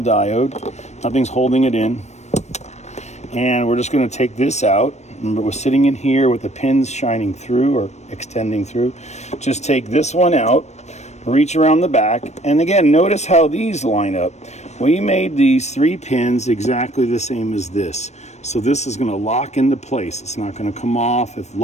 Nothing's holding it in. And we're just going to take this out. Remember, we're sitting in here with the pins shining through or extending through. Just take this one out, reach around the back, and again, notice how these line up. We made these 3 pins exactly the same as this. So this is going to lock into place. It's not going to come off if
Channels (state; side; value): late; right; 0.32 ms